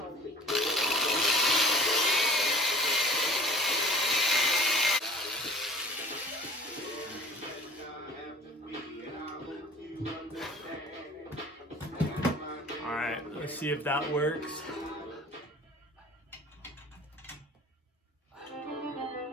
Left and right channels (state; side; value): normal; both; correlation 0.44